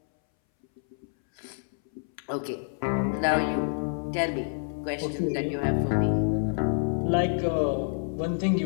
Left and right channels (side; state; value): right; silent; 60 dB below the other